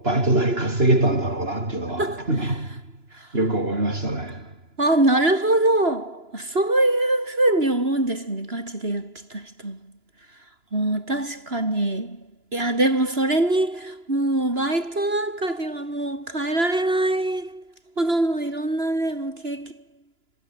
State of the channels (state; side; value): late; left; 2.9 ms